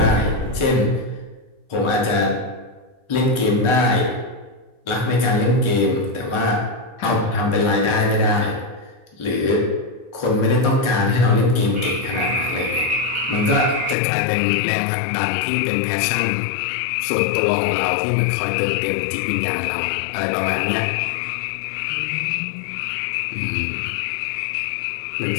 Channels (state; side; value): drops out; right; at 14.0 s